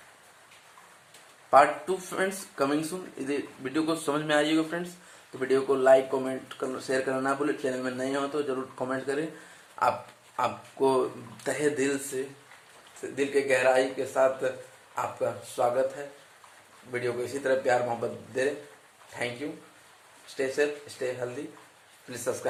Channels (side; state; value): both; identical; correlation 1.00